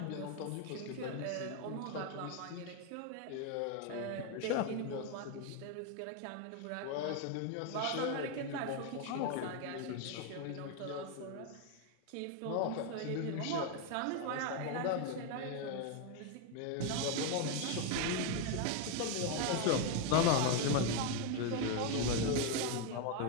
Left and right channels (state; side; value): different; both; correlation 0.01